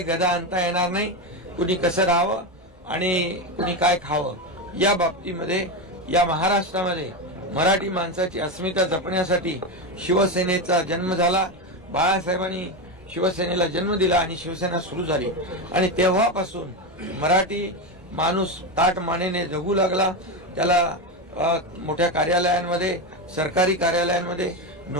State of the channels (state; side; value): normal; both; correlation 0.14